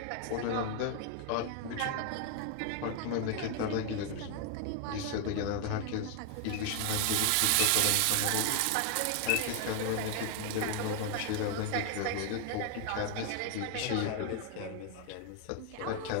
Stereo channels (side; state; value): both; different; correlation 0.00